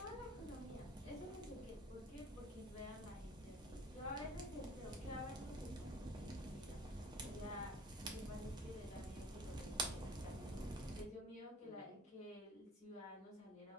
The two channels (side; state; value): both; normal; correlation 0.48